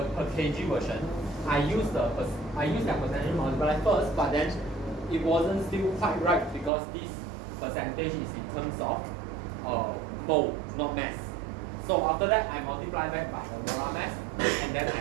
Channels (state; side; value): drops out; left; at 6.7 s